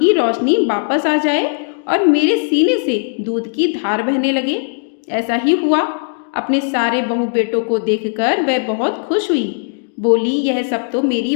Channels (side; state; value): right; silent; digital silence